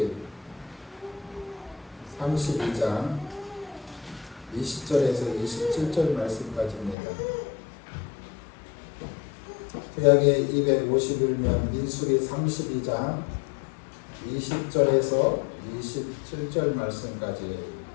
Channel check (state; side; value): drops out; right; at 7.0 s